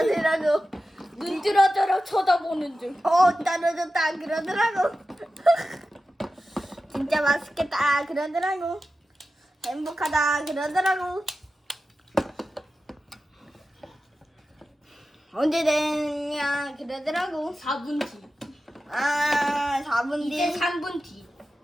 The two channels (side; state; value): both; normal; correlation 0.93